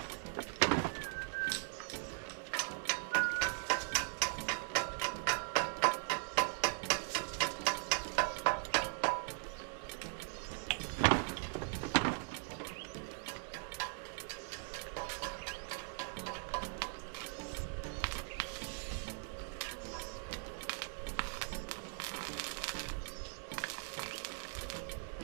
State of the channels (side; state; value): left; silent; 51 dB below the other